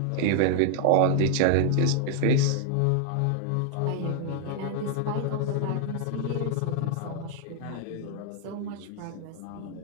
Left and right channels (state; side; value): different; both; correlation 0.00